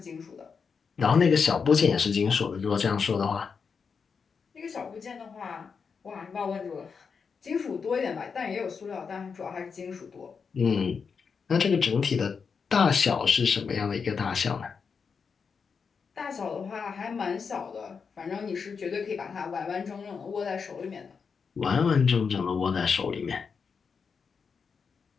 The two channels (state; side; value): quieter; right; 5.7 dB